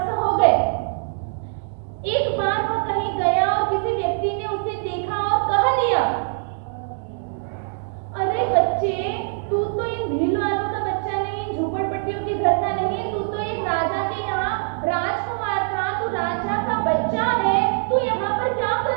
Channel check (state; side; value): silent; left; 63 dB below the other